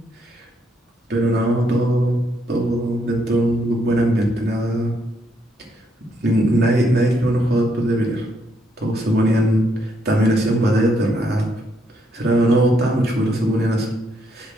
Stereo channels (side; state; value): both; normal; correlation 0.74